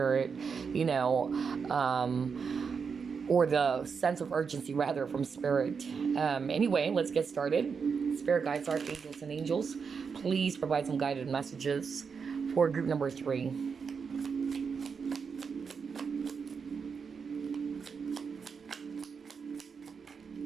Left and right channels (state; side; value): quieter; left; 5.8 dB